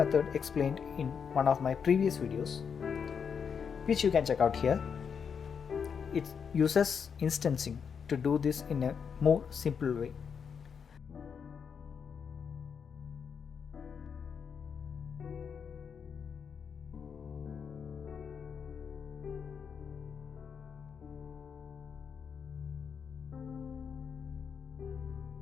explained in one of my previous videos, which you can check out here. It uses instancing to do this in a more simple way.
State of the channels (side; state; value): right; quieter; 6.7 dB